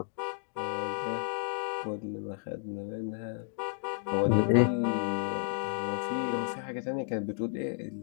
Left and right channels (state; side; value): silent; right; 56 dB below the other